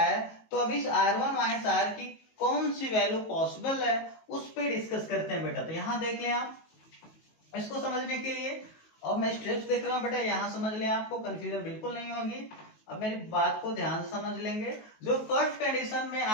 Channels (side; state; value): right; late; 19 ms